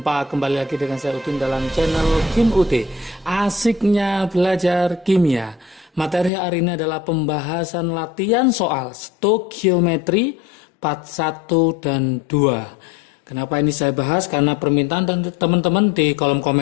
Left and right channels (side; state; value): right; drops out; at 6.3 s